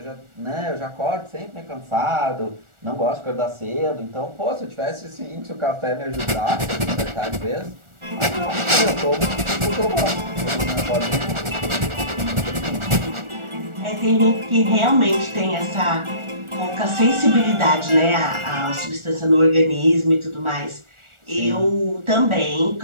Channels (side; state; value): left; late; 1.4 ms